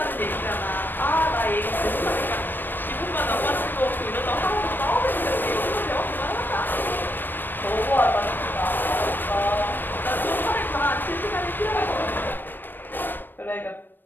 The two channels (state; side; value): late; right; 0.094 ms